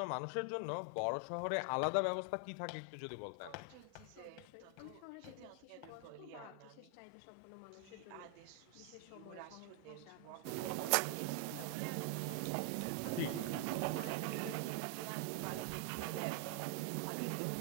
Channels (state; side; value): different; both; correlation 0.00